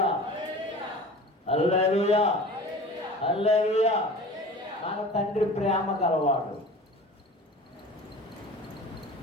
హల్లెలూయా, హల్లెలూయా. మన తండ్రి ప్రేమ గలవాడు.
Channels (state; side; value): normal; both; correlation 0.39